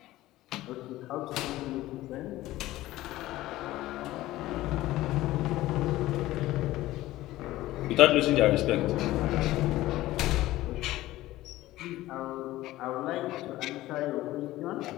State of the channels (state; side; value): quieter; right; 16.5 dB